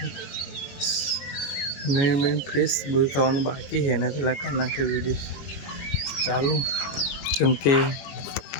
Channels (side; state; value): right; late; 21 ms